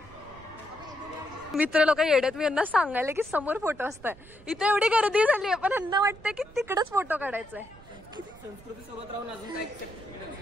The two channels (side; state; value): right; noise; rumble, 21 dB below the sound